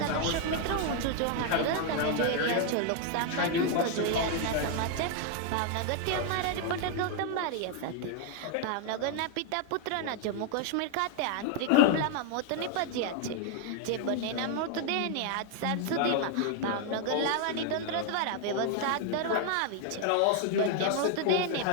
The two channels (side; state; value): both; different; correlation 0.01